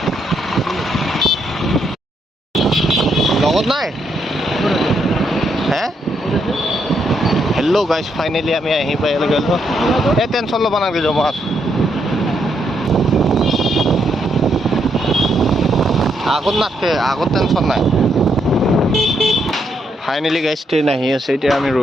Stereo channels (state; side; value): normal; both; correlation 0.77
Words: লগত নাই হে হেল্ল' গাইজ, ফাইনেলি আমি আহি পাই গ'লো। এই টেনশ্যন ল'ব নালাগে, যাম আছোঁ আগত নাথাকে, আগত টেনশ্যন নাই। ফাইনেলি গাইজ ট্ৰেইন আহি আছে, এতিয়া আমি